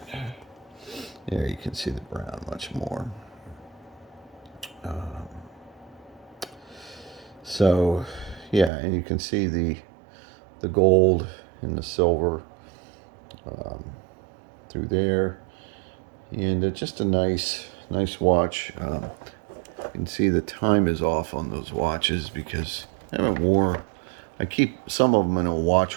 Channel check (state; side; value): drops out; left; at 8.7 s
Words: There you can see the brown much more. So, yeah, and you can see the gold and the silver through there, and just a nice watch. You can see the time is off on those watches because I haven't worn. I keep some of them in a